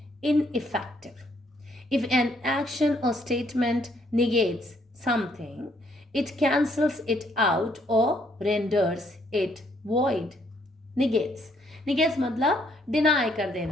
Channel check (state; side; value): normal; both; correlation 0.69